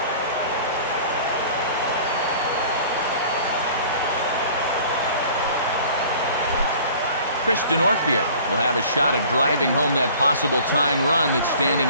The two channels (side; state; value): both; inverted; correlation -0.47